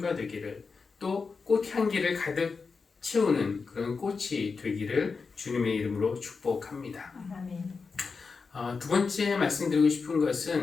되기를, 또 꽃향기를 가득 채우는 그런 꽃이 되기를 주님의 이름으로 축복합니다. 아멘. 두 번째 말씀드리고 싶은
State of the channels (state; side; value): quieter; right; 4.8 dB